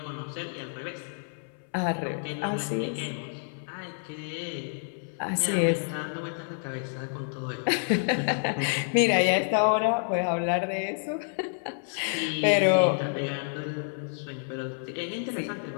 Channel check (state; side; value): silent; right; 59 dB below the other